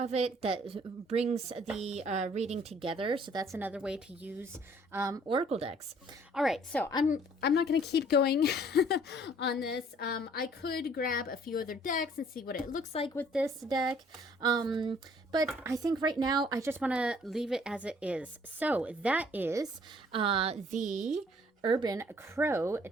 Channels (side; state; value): both; normal; correlation 0.58